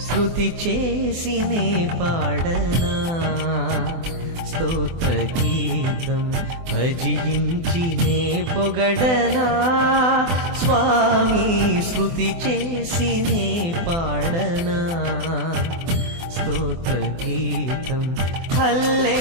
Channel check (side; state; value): left; late; 24 ms